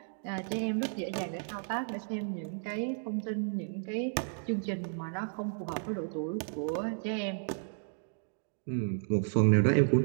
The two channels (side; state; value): left; silent; digital silence